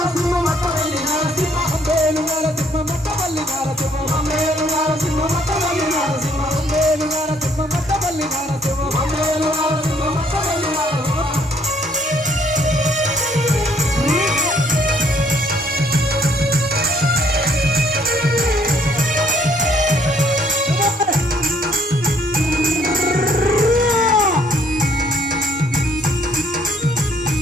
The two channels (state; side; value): normal; both; correlation 0.65